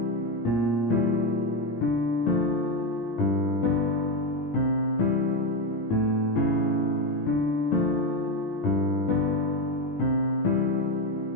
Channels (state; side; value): late; right; 17 ms